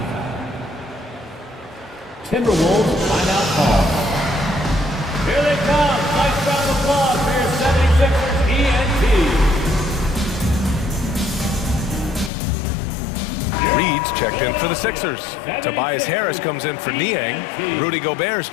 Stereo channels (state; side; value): drops out; right; at 12.3 s